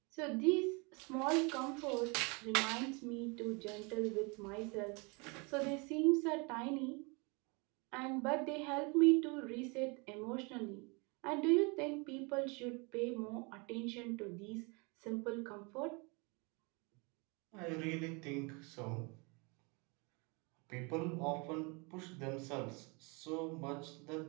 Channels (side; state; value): left; quieter; 30.3 dB